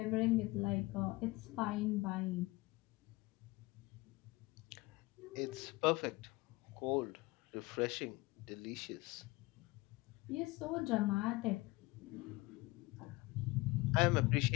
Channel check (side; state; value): right; quieter; 22.0 dB